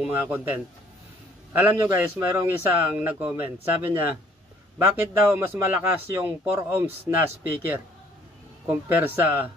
mga content. Alam nyo guys, mayroong isang nag-comment. Sabi niya, bakit daw mas malakas yung 4 ohms na speaker compare sa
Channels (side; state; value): both; normal; correlation 0.59